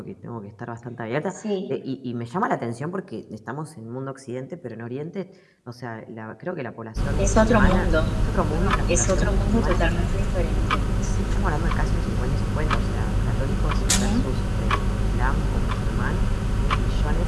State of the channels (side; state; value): both; identical; correlation 1.00